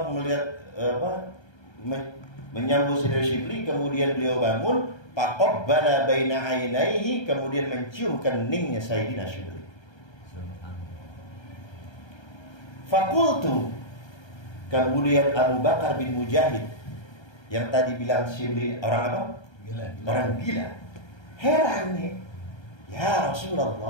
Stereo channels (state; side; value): late; right; 1.3 ms